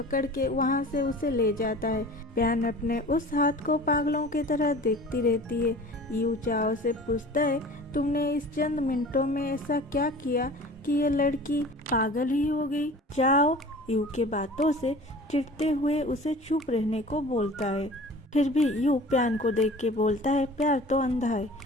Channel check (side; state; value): both; normal; correlation 0.42